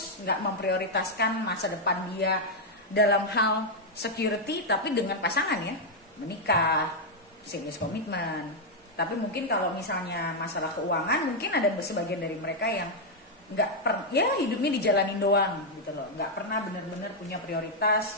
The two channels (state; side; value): normal; both; correlation -0.01